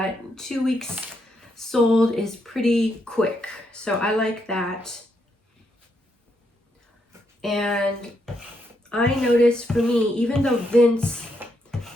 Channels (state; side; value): normal; both; correlation 0.78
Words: 2 weeks sold is pretty quick. So I like that. And I noticed for me, even though Vince